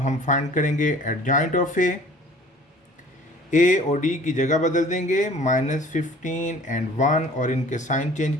हम फाइंड करेंगे एडजॉइंट ऑफ A, ए और डी की जगह बदल देंगे, -15 एंड 1, और इनके साइन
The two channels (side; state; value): both; normal; correlation 0.50